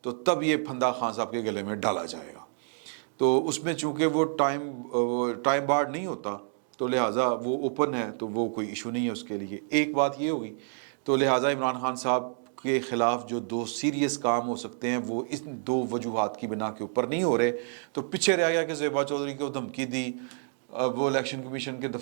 تو تب یہ پھندا خان صاحب کے گلے میں ڈالا جائے گا. تو اس میں چونکہ وہ ٹائم بارڈ نہیں ہوتا تو لہٰذا وہ اوپن ہے، تو وہ کوئی ایشو نہیں ہے اس کے لیے. ایک بات یہ ہوگی. تو لہٰذا عمران خان صاحب کے خلاف جو دو سیریس کام ہو سکتے ہیں وہ اس دو وجوہات کی بنا کے اوپر نہیں ہو رہے. تو پیچھے رہ گیا کہ زیبا چودھری کو دھمکی دی وہ الیکشن کمیشن کے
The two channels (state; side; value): silent; left; digital silence